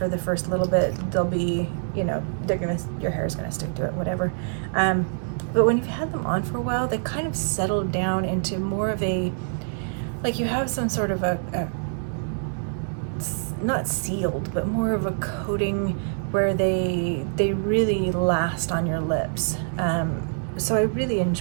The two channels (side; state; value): left; silent; digital silence